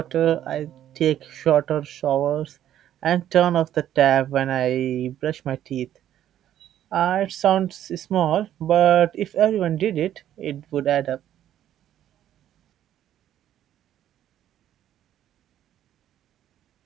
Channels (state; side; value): quieter; left; 11.4 dB